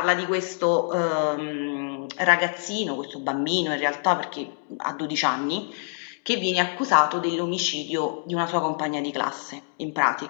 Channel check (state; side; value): silent; right; 55 dB below the other